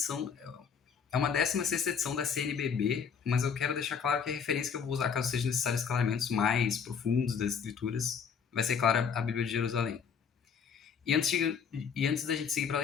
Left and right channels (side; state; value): right; quieter; 6.7 dB